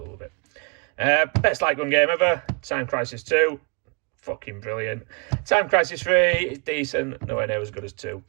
love it. Best light gun game ever. Time Crisis 2. Fucking brilliant. Time Crisis 3 is decent, nowhere near as good as 2.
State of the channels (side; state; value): left; quieter; 34.3 dB